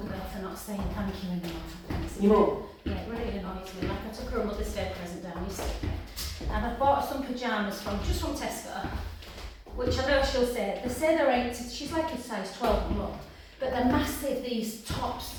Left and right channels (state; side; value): identical; both; correlation 1.00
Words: for not saying thank you enough. Your mum? Yeah, it really annoys me. Like I took her a Mother's Day present down yesterday, and I bought some pyjamas from Tesco, which I know she'll say, they say they're 8, she's like a size 12 mum, but they're massive, these tops.